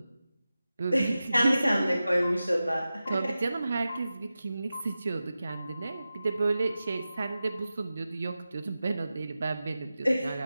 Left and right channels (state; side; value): inverted; both; correlation -0.94